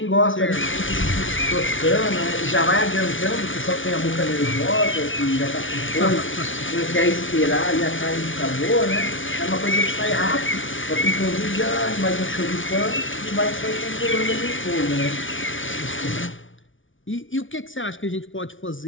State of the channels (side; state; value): right; late; 0.57 ms